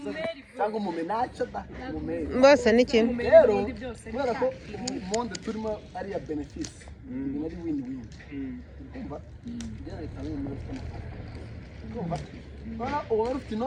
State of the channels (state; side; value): identical; both; correlation 1.00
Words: cyangwa umumenaca da umumeri bose ni kimwe rero kubera ko monde turimo ari ya benefisi ni ari win-win kumva njyana itanga umuntu ufite amafaranga kumva bana uwo ufite